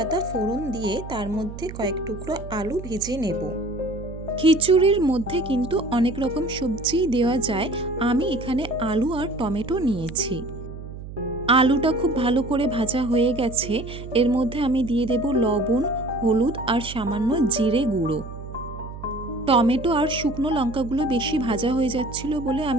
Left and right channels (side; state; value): right; noise; hum, 12 dB below the sound